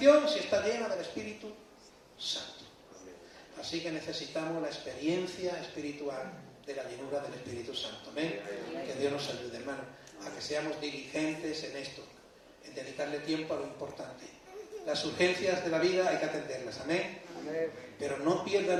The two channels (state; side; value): identical; both; correlation 1.00